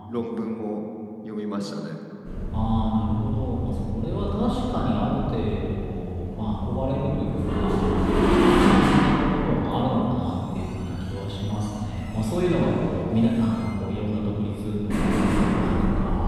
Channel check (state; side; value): identical; both; correlation 1.00